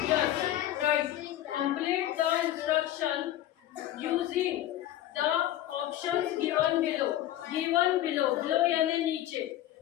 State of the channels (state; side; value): quieter; right; 13.1 dB